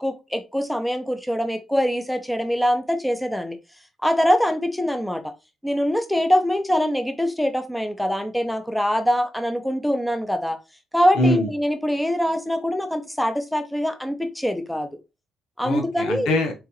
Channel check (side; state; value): both; normal; correlation 0.92